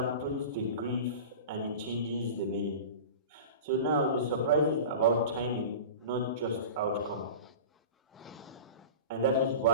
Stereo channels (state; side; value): inverted; both; correlation -0.34